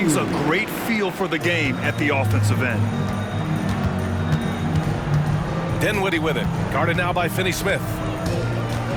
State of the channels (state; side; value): identical; both; correlation 1.00